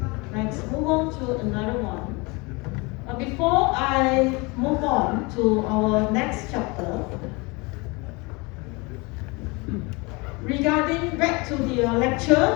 move on to another one. Before I move on to our next chapter, regarding back to the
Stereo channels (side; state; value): right; quieter; 27.0 dB